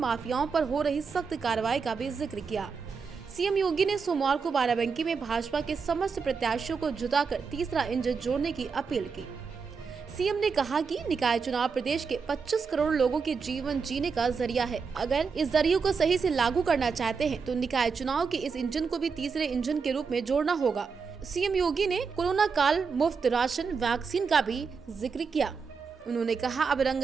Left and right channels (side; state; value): left; quieter; 5.4 dB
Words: पर हो रही सख्त कार्रवाई का भी जिक्र किया। सीएम योगी ने सोमवार को बाराबंकी में भाजपा के समस्त प्रत्याशियों को जुटाकर तीसरा इंजन जोड़ने की अपील की। सीएम ने कहा कि निकाय चुनाव प्रदेश के 25 करोड़ लोगों के जीवन जीने का जरिया है। अगर इस जरिए को सही से लागू करना चाहते हैं तो निकाय चुनाव के इस इंजन को भी तीसरे इंजन के रूप में जोड़ना होगा। सीएम योगी ने कोरोना काल मुफ्त राशन वैक्सीन का भी जिक्र किया। उन्होंने कहा, अब